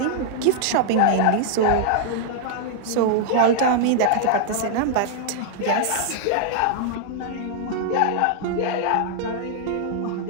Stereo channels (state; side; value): different; both; correlation -0.01